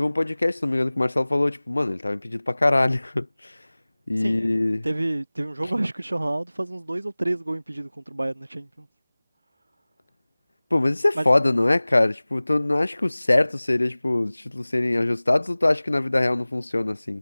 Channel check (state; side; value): inverted; both; correlation -0.99